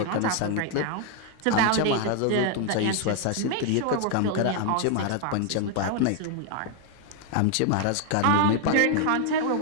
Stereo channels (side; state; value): both; different; correlation 0.00